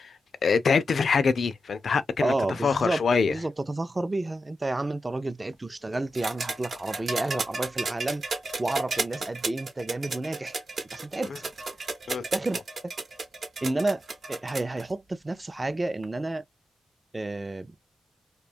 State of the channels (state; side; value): normal; both; correlation 0.89